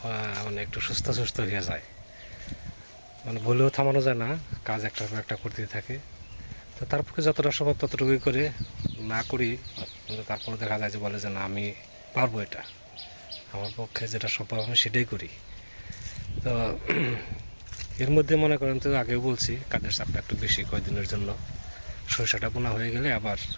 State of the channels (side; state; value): both; inverted; correlation -1.00